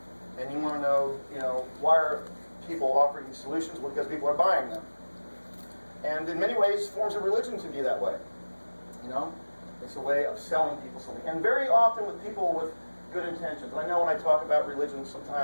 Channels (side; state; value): both; inverted; correlation -1.00